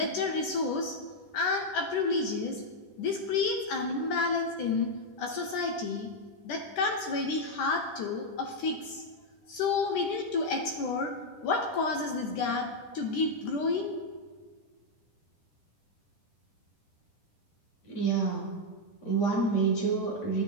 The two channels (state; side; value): late; right; 10 ms